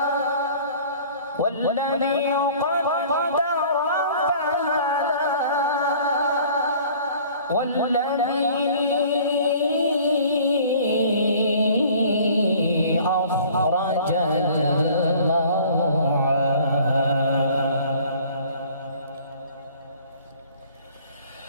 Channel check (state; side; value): inverted; both; correlation -0.50